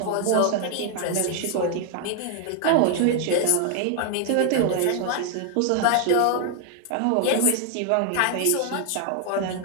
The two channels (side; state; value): both; different; correlation 0.00